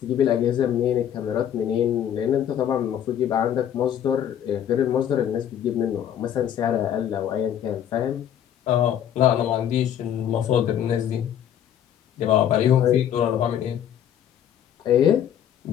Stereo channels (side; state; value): right; quieter; 9.9 dB